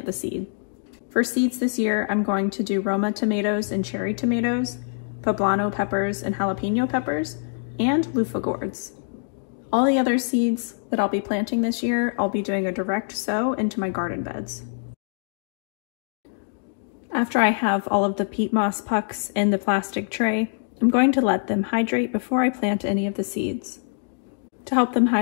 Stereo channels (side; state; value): right; silent; digital silence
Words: the seed. For seeds this year, I'm going to do Roma tomatoes and cherry tomatoes, poblano peppers and jalapeno peppers, and luffa gourds. All the other seeds that I'll be planting this year, I'll be doing a direct sow into my garden beds. After I have all of the peat moss pucks in the plastic tray, I'm going to let them hydrate before I plant any of the seeds. To help them